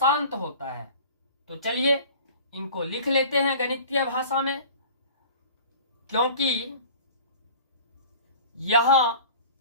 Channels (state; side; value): inverted; both; correlation -0.43